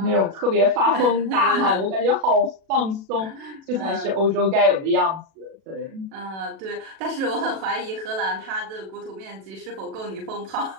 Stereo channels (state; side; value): late; left; 37 ms